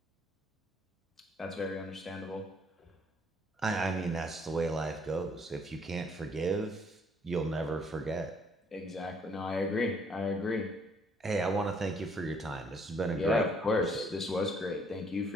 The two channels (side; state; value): both; normal; correlation 0.65